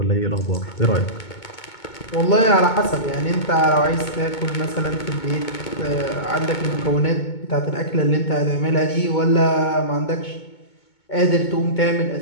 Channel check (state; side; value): late; right; 2.2 ms